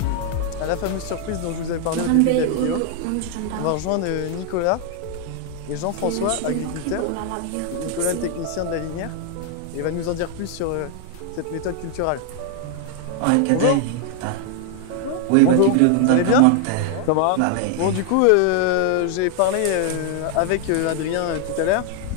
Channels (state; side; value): different; both; correlation 0.00